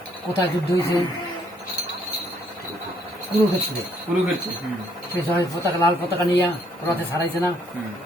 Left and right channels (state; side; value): normal; both; correlation 0.68